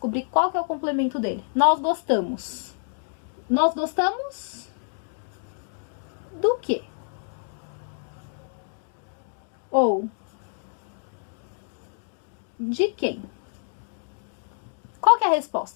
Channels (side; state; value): right; silent; digital silence